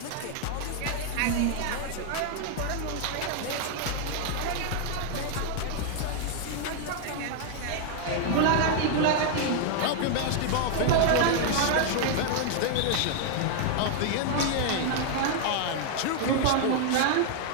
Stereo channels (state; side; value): different; both; correlation 0.00